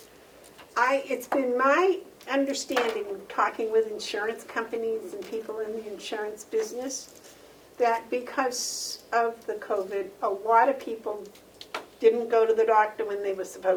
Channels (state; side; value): identical; both; correlation 1.00